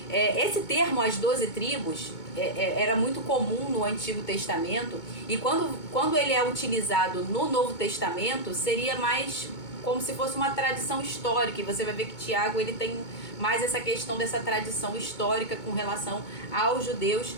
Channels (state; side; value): late; right; 2.2 ms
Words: Esse termo, as 12 tribos, era muito comum no Antigo Testamento, e quando ele é utilizado no Novo Testamento, seria mais como se fosse uma tradição histórica. E você vai ver que Tiago, ele tem mais essa questão dessa tradição histórica com relação aos judeus.